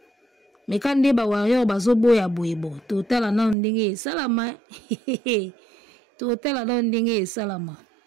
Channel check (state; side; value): drops out; left; at 3.6 s